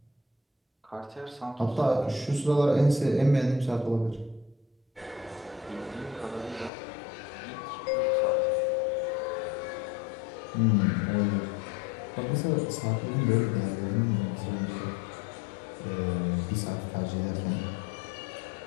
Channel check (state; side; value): drops out; right; at 6.7 s